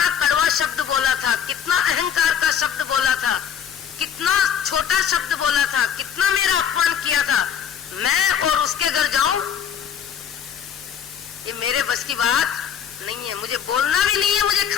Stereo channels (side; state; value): right; quieter; 8.2 dB